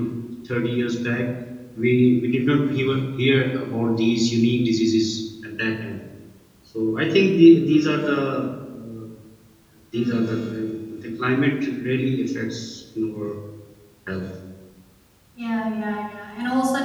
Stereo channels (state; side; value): identical; both; correlation 1.00